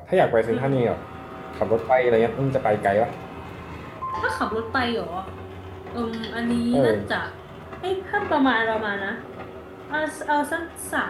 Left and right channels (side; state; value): both; identical; correlation 1.00